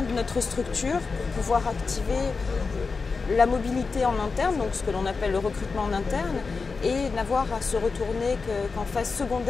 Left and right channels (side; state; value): right; quieter; 4.5 dB